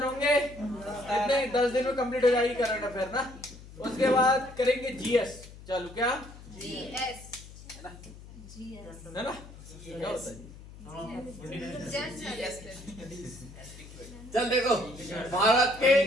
होंगे, कितने 10 दिन में कंप्लीट हो जाएगी करंट अफेयर ना। उसके बाद करेंगे जीएस। चलो क्या जीएस है ना क्या होता है? चल देखो, भारत के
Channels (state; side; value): noise; left; hum, 17 dB below the sound